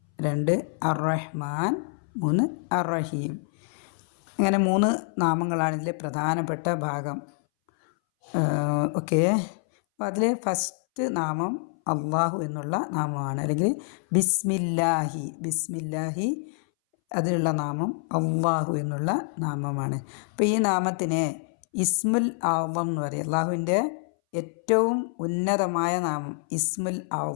2 അർ-റഹ്മാൻ, 3 അർ-റഹീം. അങ്ങനെ 3 നാമങ്ങളാണ് ഇതിലെ പ്രധാനപ്പെട്ട ഭാഗം. ഓക്കെ, അപ്പോൾ അതിൽ ഫസ്റ്റ് നാമം അള്ളാഹു എന്നുള്ള നാമമാണ്, അല്ലെങ്കിൽ ബിസ്മില്ലാഹി അതിലുള്ള നാമം അള്ളാഹു എന്നുള്ള നാമമാണ്. അപ്പോൾ ഈ നാമത്തിനെ ഇസ്മുൽ അഅ്ളം എന്ന് പറയും. അള്ളാഹുവിൻ്റെ ഏറ്റവും ഉന്നതമായ നാമം ഇസ്മുൽ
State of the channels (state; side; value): silent; right; 60 dB below the other